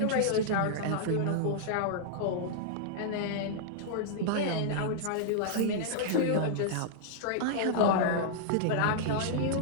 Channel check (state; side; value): different; both; correlation -0.01